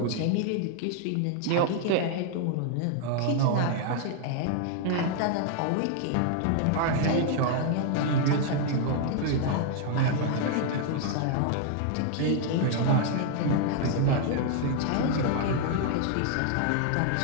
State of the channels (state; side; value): different; both; correlation 0.00